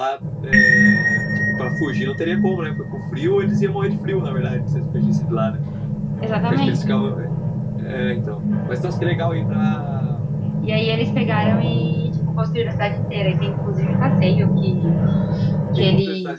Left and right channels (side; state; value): both; identical; correlation 1.00